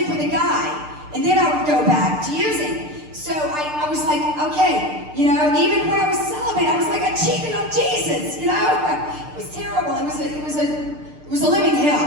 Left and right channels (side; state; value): left; late; 6.7 ms